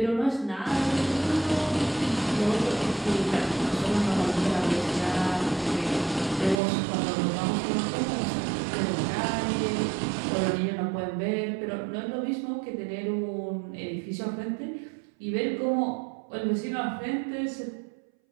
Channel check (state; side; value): drops out; left; at 6.6 s